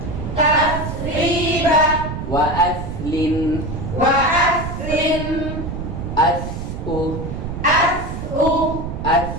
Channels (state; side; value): noise; right; rumble, 6 dB below the sound